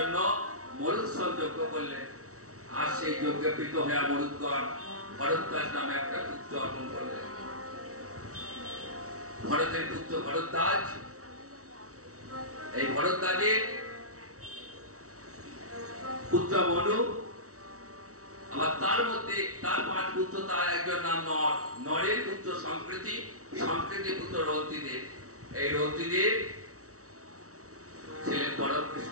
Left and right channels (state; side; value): late; left; 0.65 ms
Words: মরুৎসব যজ্ঞ করলেন। আর সেই যজ্ঞে প্রীত হয়ে মরুৎগণ ভরদ্বাজ নামে একটা পুত্র অর্পণ করলেন। ভরতের পুত্র ভরদ্বাজ, এই ভরদ্বাজের পুত্র মনু, আবার তার মধ্যে তার 5 পুত্র, তার একজন নাম নর, নরের পুত্র সংকৃতি, সংকৃতির পুত্র রন্তিদেব। এই রন্তিদেব ছিলেন পরম